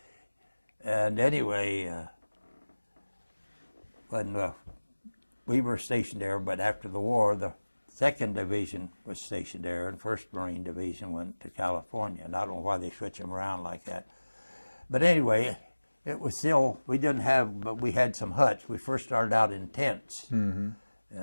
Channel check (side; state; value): both; inverted; correlation -1.00